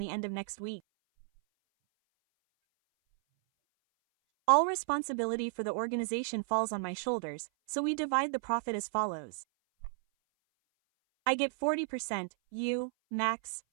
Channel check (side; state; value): left; silent; 56 dB below the other